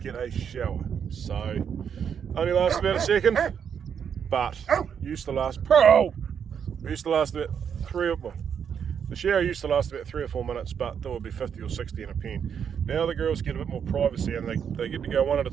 a shower, so only lasts about a second, but used to last about the shower used to last about 3 or 4 minutes, but there would be 50 or 60 in a pen. Now the girls get a bit more privacy and they get to go one at a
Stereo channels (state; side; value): quieter; left; 7.7 dB